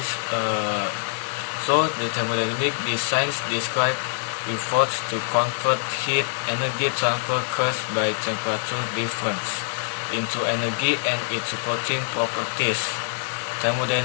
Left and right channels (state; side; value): silent; right; digital silence